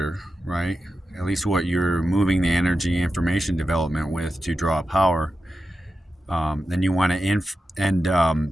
right? At least what you're moving the energy information development with to draw power. Then you want to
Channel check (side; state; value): both; normal; correlation 0.91